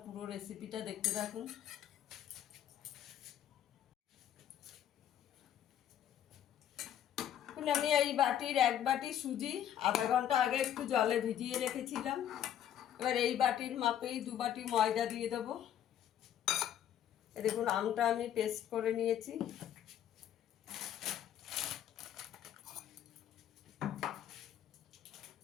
পুরো রেসিপিটা দেখতে থাকুন। আমি এই বাটির এক বাটি সুজি আধা ঘন্টা আগে একটু জলে ভিজিয়ে রেখেছিলাম। এবার এই বাটির মাপেই 2 বাটি ময়দা দিয়ে দেবো। দেখুন, আমটা আমি পেস্ট করে নিয়েছি।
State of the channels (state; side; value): quieter; right; 10.6 dB